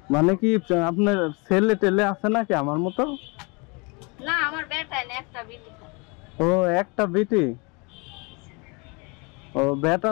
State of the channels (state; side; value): quieter; right; 30.1 dB